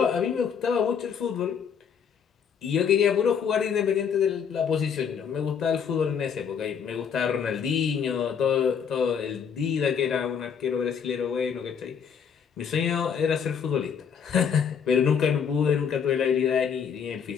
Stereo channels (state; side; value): quieter; right; 7.2 dB